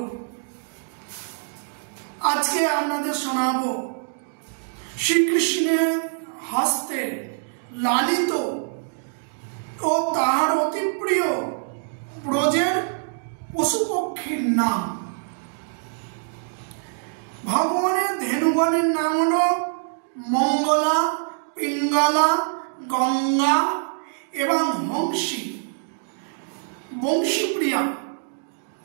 আজকে আপনাদের শোনাবো শ্রীকৃষ্ণের হস্তে লালিত ও তাহার অতি প্রিয় ব্রজের পশু পক্ষীর নাম। ভগবানের ধেনুগণের নাম হলো মঙ্গলা, পিঙ্গলা, গঙ্গা এবং হংসী। বংশীপ্রিয়া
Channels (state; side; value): silent; left; digital silence